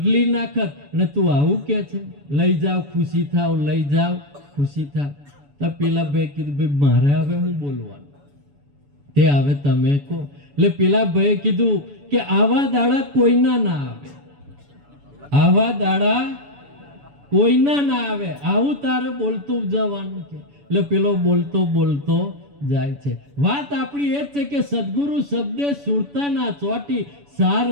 નાખત. અને તું આવું કે છે લઈ જાઓ ખુશી થાવ, લઈ જાઓ ખુશી થાવ. તો પેલા ભાઈ કીધું ભાઈ મારે હવે હું બોલવાનું? તે હવે તમે કહો. એટલે પેલા ભાઈએ કીધું કે આવા દાડા કોઈના ના આવે, આવા દાડા કોઈના ના આવે, આવું તારે બોલતું જવાનું છે. એટલે પેલો બોલતો બોલતો જાય છે. વાત આપણી એ જ છે કે સદગુરુ શબ્દે સુરતા ના ચોટી, સાર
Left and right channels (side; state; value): left; late; 7.0 ms